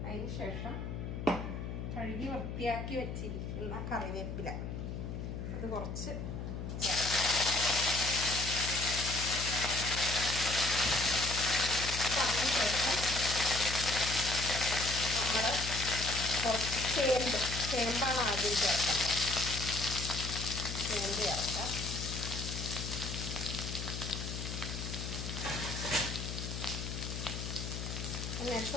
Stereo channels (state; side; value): noise; left; hum, 5 dB below the sound